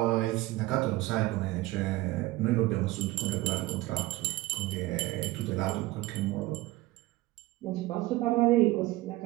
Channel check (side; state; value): left; quieter; 18.5 dB